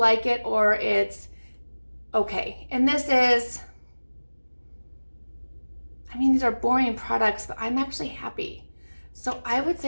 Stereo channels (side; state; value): both; inverted; correlation -1.00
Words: it or it's okay. And this is, I mean, these are boring products, but I'm actually happy. So I would